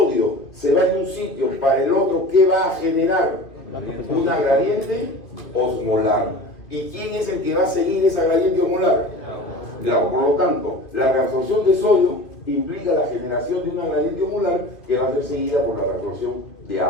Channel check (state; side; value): late; right; 2.5 ms